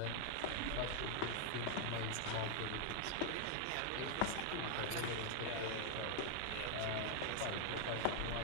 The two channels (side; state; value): both; different; correlation 0.00